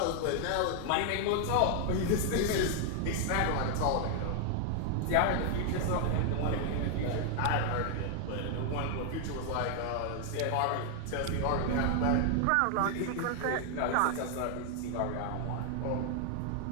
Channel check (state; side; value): different; both; correlation 0.00